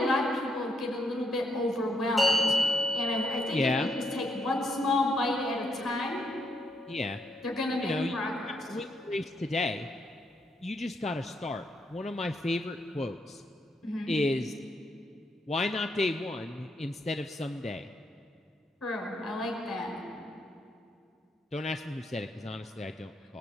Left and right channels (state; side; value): normal; both; correlation 0.76